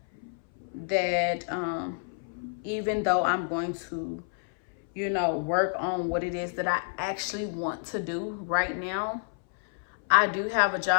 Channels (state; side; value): silent; right; 59 dB below the other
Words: that even though I'm going to, work on what it is that I actually want to do right now, I do have a